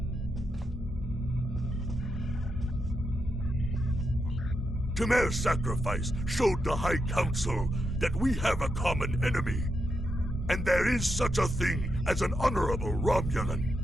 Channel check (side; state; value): both; normal; correlation 0.83